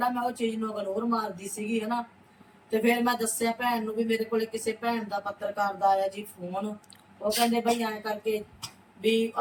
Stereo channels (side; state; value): both; identical; correlation 1.00